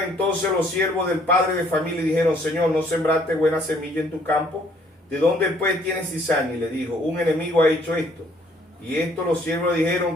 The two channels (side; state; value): both; normal; correlation 0.63